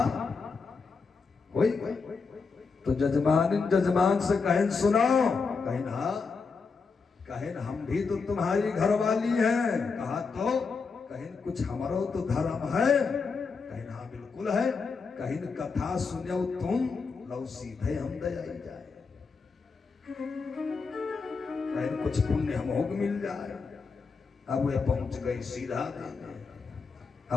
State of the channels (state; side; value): quieter; right; 4.8 dB